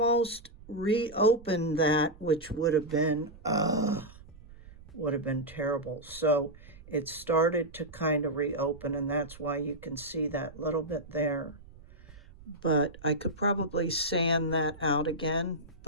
reopened that, which would have been terrible. So it started to kind of reopen, and that's why you can see that little bit there. But I could probably sand that out again,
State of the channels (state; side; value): noise; right; rumble, 20 dB below the sound